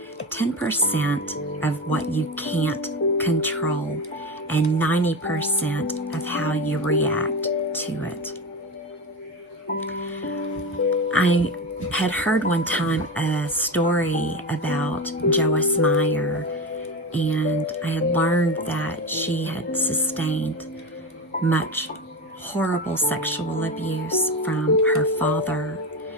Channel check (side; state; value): both; normal; correlation 0.21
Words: 10% of what you can't control and 90% of how you react to it. I had heard one time a story about Joyce Meyer, and I had learned that she had sustained much horrible sexual abuse from her father,